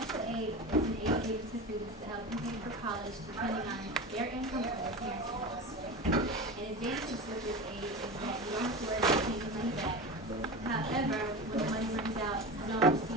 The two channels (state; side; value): normal; both; correlation 0.27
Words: aid is an aid given to students to help them pay for college depending on their income or their parents' income. An advantage with this aid is that you don't have to worry about taking money back. However, when the money runs out, you don't